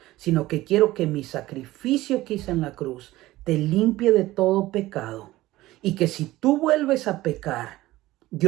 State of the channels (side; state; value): left; quieter; 17.2 dB